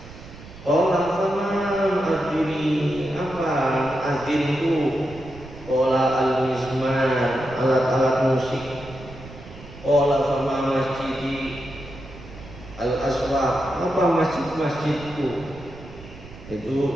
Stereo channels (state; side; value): noise; right; rumble, 16 dB below the sound